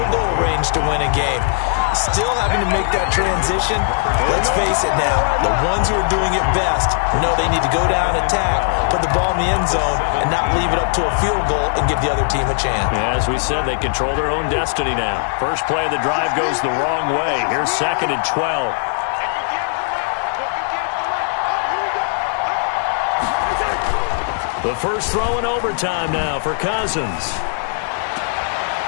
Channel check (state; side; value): silent; right; 57 dB below the other